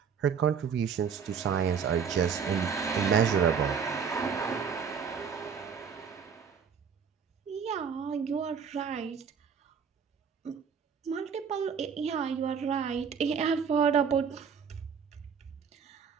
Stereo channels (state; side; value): quieter; left; 6.7 dB